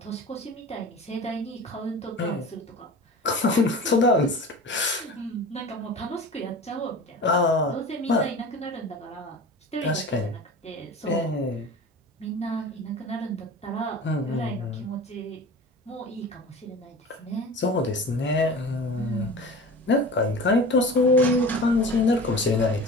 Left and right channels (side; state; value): both; normal; correlation 0.36